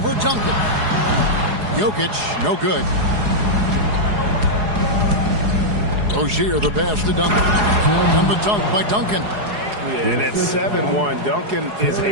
Duncan. Jokic, no good. Rozier, the pass to Duncan. And the dunk by Duncan. Yeah, and at 7-1, Duncan is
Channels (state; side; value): late; left; 4.8 ms